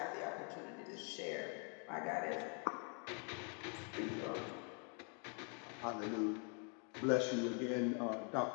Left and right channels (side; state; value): right; quieter; 38.2 dB